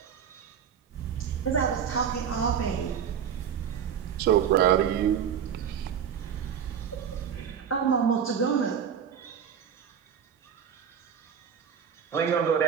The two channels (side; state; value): left; quieter; 8.0 dB